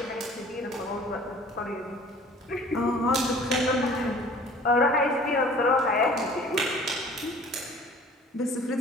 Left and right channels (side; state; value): both; normal; correlation 0.49